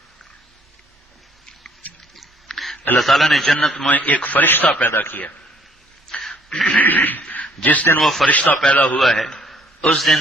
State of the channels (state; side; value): normal; both; correlation 0.61